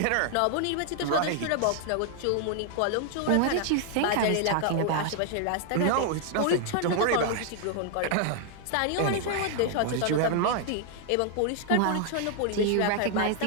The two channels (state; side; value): different; both; correlation 0.00